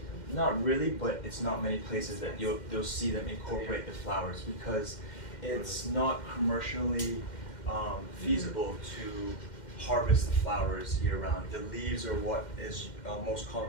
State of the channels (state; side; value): late; right; 2.1 ms